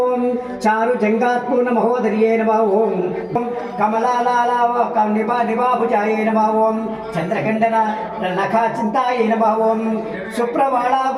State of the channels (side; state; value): both; identical; correlation 1.00